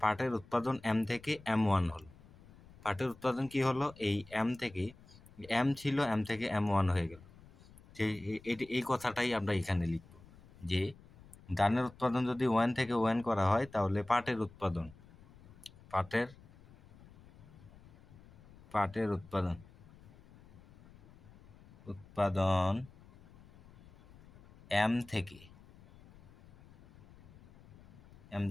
উৎপাদন M থেকে M1 হলো। পাটের উৎপাদন কি হলো, এই M থেকে M ছিল, M থেকে M1 হয়ে গেল। এই কথাটাই আমরা এখানে লিখব যে ধানের উৎপাদন যদি ON থেকে ON করা হয়, তাহলে পাটের উৎপাদন M থেকে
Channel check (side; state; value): left; noise; rumble, 23 dB below the sound